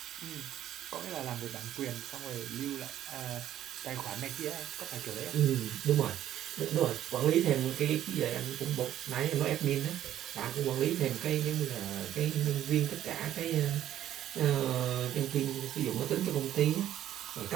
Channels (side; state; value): left; quieter; 11.8 dB